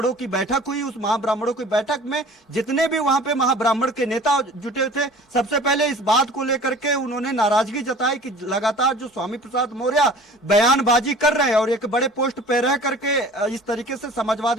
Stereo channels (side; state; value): both; normal; correlation 0.45